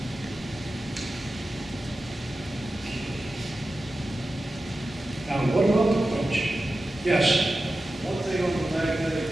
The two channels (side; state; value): both; normal; correlation 0.93